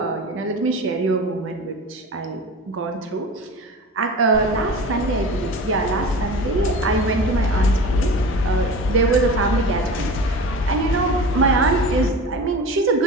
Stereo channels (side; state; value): both; normal; correlation 0.34